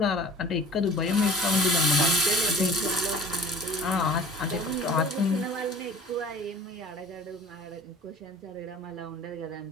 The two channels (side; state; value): both; normal; correlation 0.44